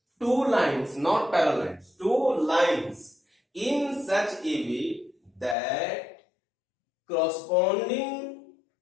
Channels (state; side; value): drops out; right; at 5.6 s